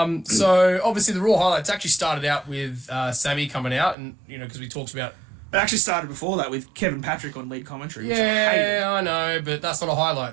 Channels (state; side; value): drops out; left; at 4.0 s